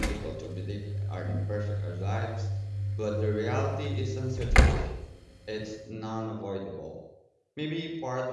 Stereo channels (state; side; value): identical; both; correlation 1.00